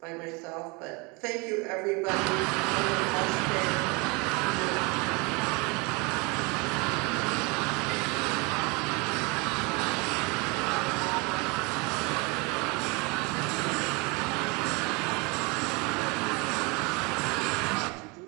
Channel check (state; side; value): quieter; left; 28.7 dB